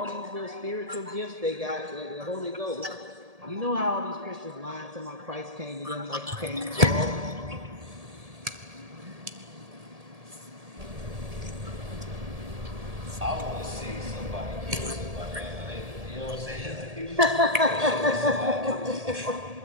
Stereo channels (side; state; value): left; late; 1.7 ms